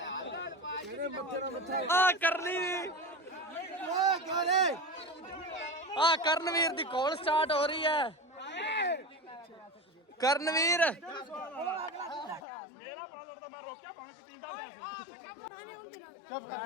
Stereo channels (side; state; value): right; drops out; at 12.4 s